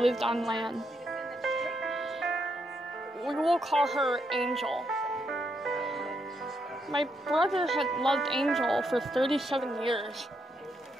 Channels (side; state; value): both; normal; correlation 0.78